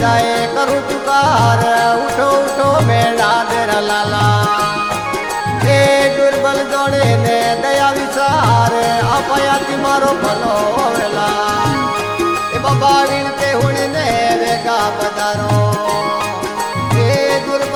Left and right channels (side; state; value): both; identical; correlation 1.00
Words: जाए करूँ पुकार उठो उठो मेरा तेरा लाला ए दुर्बल जोड़े ने दया विचार अपयाती मारो भलो वेला ए बाबा विनते हुणी ने वेगा पधारो ए